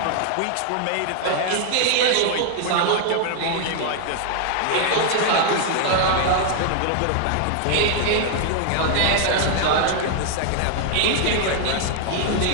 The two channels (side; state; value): both; different; correlation 0.00